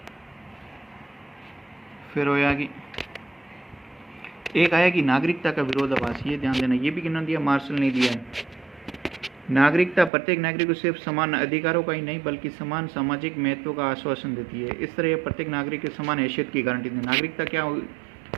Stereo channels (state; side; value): drops out; left; at 10.1 s